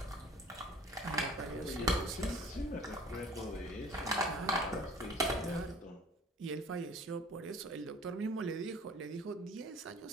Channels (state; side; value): normal; both; correlation 0.49